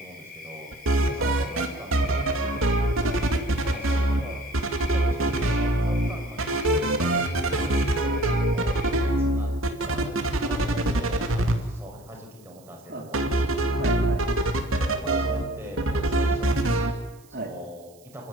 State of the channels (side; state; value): right; noise; hiss, 28 dB below the sound